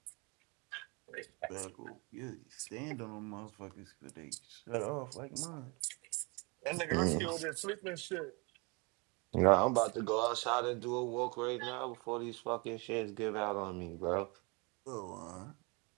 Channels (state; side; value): quieter; left; 29.9 dB